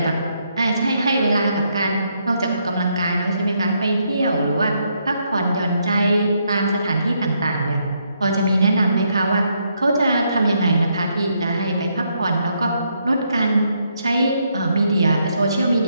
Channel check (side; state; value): both; inverted; correlation -0.76